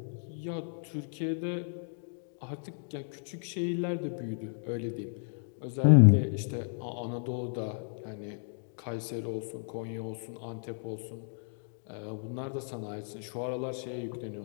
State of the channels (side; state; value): right; silent; digital silence